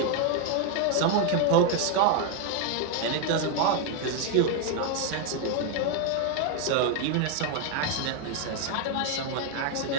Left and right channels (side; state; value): both; different; correlation 0.01